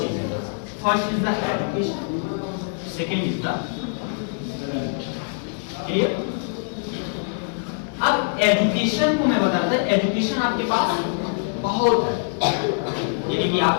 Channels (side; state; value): right; silent; 63 dB below the other